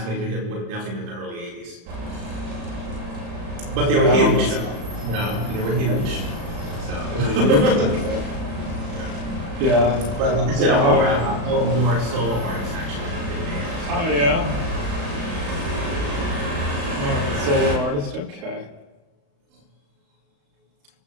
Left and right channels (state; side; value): late; left; 35 ms